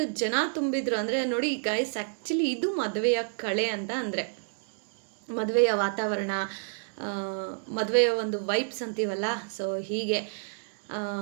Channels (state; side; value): silent; left; digital silence